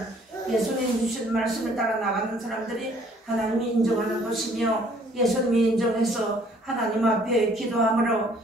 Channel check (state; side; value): normal; both; correlation 0.59